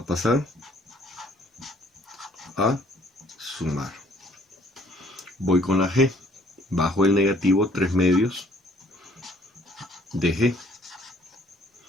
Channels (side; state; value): both; normal; correlation 0.61